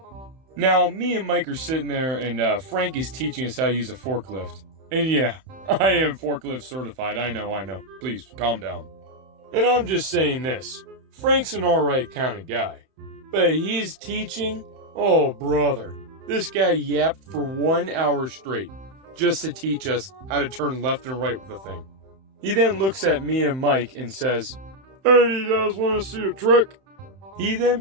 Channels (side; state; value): left; late; 31 ms